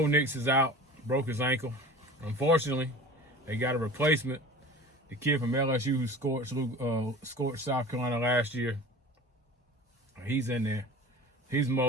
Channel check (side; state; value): both; normal; correlation 0.38